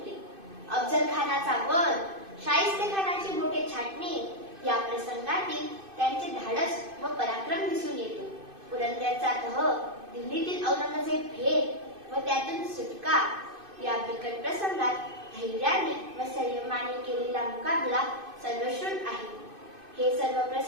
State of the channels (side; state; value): left; late; 2.5 ms